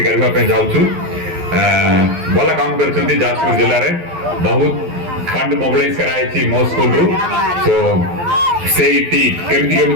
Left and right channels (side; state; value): left; late; 12 ms